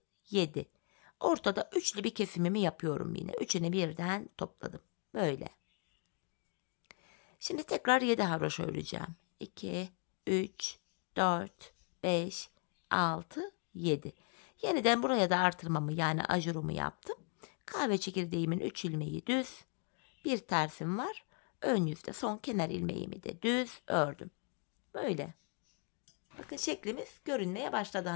7. Ortada üçlü bir kesimimi yapıyorum yine. Üçünü birden topladım. Böyle. Şimdi tekrar 7 haroşa öreceğim. 2, 3, 4, 5, 6, 7. Yeniden buraya da artırmamı yani ajurumu yaptım. Kahve çekirdeğimin 3 ilmeği düz. Bir tersim var. Ön yüzde son kenar ilmeğimi de düz ördüm. Böyle. Bakın şeklimiz görünmeye başladı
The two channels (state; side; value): quieter; right; 36.8 dB